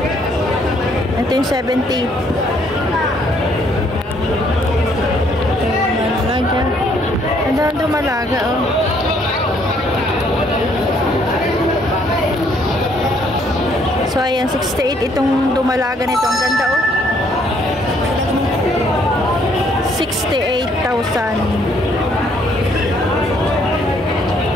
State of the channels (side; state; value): both; normal; correlation 0.66